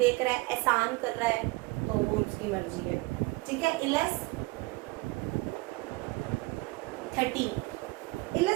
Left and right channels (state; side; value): quieter; left; 23.6 dB